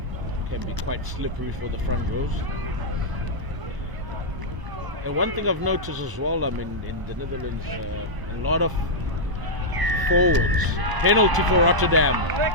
Can be quite slippery for the front rows. And one thing I've noticed as well, I mean, in the Netherlands, a lot of forwards. Penalty for Rotterdam.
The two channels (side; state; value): left; late; 1.0 ms